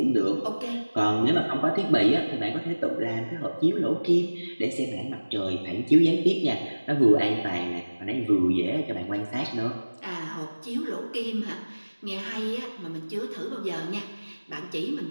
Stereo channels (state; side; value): inverted; both; correlation -1.00